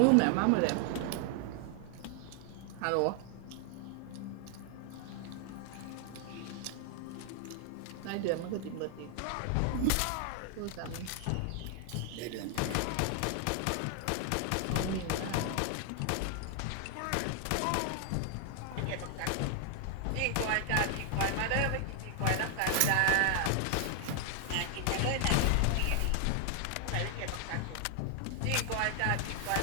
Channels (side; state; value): both; different; correlation 0.00